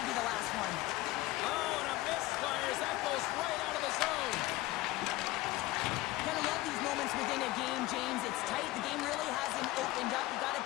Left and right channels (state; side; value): quieter; right; 18.0 dB